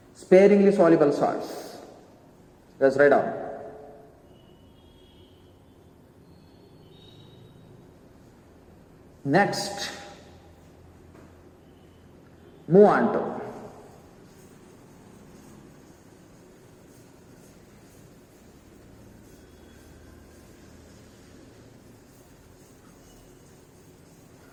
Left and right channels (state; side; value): identical; both; correlation 1.00